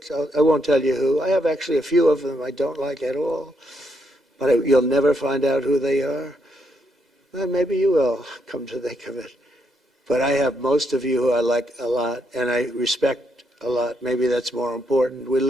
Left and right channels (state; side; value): normal; both; correlation 0.77